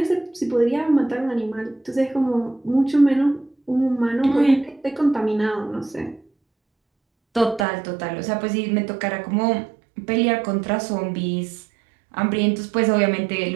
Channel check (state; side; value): drops out; left; at 7.7 s